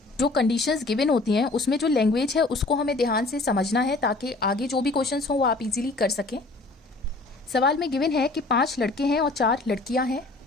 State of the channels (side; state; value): right; quieter; 3.2 dB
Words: जो कंडीशंस गिवन होती हैं उसमें जो लैंग्वेज है उसको हमें ध्यान से समझना है ताकि आगे जो भी क्वेश्चंस हों वो आप इजीली कर सकें। सवाल में गिवन है कि 5 लड़के हैं और 4 लड़कियां हैं